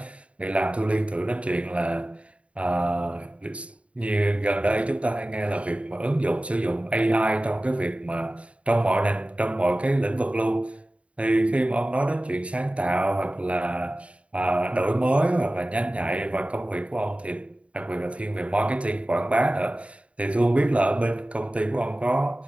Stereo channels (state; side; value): late; left; 0.063 ms